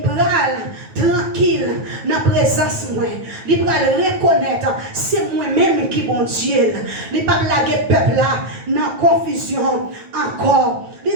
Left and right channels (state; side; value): late; left; 9.3 ms